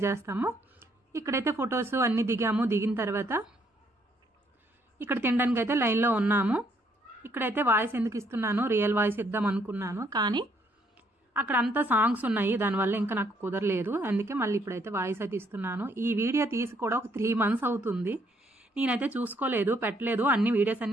చేస్తాము. ఇక్కడైతే ఫొటోస్ అన్నీ దిగాము. దిగిన తర్వాత ఇక్కడ తినడానికి అయితే లైన్లో ఉన్నాము. ఇక్కడైతే వాయిస్ ఎందుకు ఇస్తున్నాను, రియల్ వాయిస్ ఇద్దాం అనుకున్నాను, కానీ అక్కడ అంతా సాంగ్స్ ఉన్నాయి, దానివల్ల ఇంకా నాకు కుదరలేదు. అందుకే మళ్ళీ ఇప్పుడైతే వాయిస్ అయితే ఇస్తున్నాను. ఈ వీడియో తీసి కూడా ఒక 3 months అవుతుంది. నేనైతే చూసుకోలేదు, పెట్టలేదు. అన్ని వీడియోస్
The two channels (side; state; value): both; normal; correlation 0.69